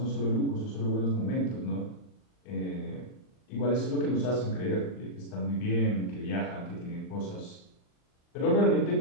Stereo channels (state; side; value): late; right; 39 ms